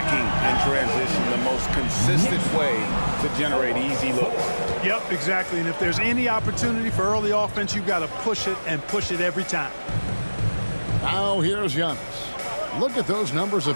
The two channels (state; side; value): inverted; both; correlation -1.00